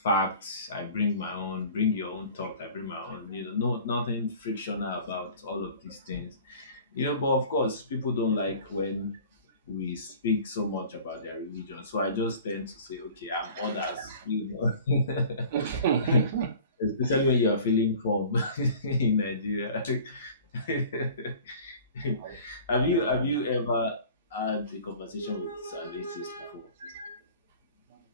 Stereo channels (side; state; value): both; inverted; correlation -0.44